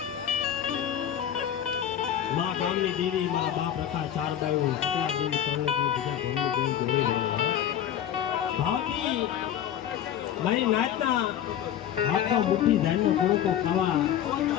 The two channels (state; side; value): quieter; right; 10.2 dB